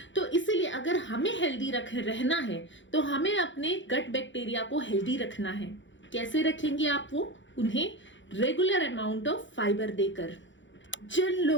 तो इसीलिए अगर हमें हेल्दी रहना है तो हमें अपने गट बैक्टीरिया को हेल्दी रखना है। कैसे रखेंगे आप वो? उन्हें रेगुलर अमाउंट ऑफ फाइबर देकर। जिन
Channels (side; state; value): right; late; 0.54 ms